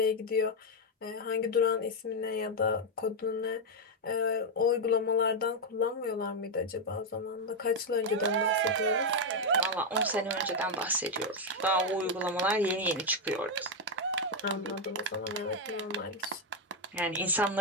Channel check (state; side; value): normal; both; correlation 0.02